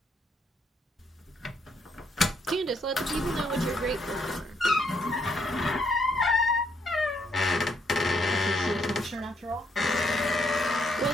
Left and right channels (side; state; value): both; normal; correlation 0.73